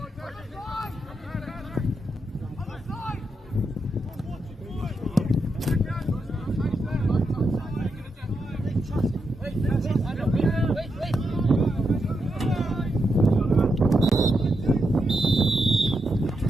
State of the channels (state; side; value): normal; both; correlation 0.84